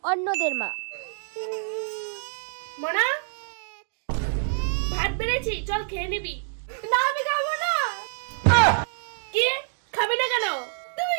অন্যদের মা, মনা ভাত বেড়েছি, চল খেয়ে নিবি। না আমি খাবো না। কি খাবি না কেন? তুমি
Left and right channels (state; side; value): silent; left; digital silence